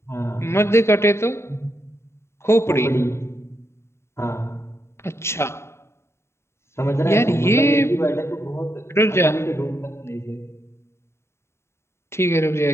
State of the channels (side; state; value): right; late; 0.13 ms